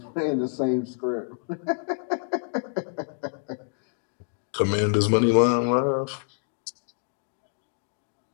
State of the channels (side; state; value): right; silent; 60 dB below the other